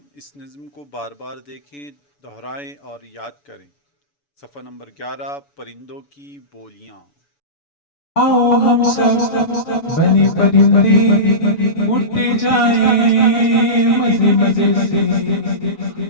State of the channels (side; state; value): right; late; 7.0 ms